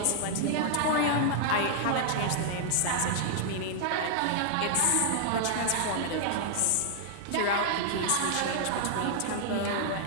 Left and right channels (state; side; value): different; both; correlation -0.01